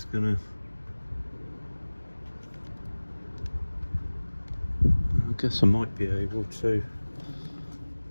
gonna. I guess I might be able to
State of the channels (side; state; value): both; inverted; correlation -1.00